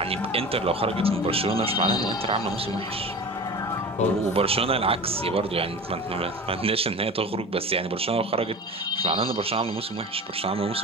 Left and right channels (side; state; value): both; normal; correlation 0.34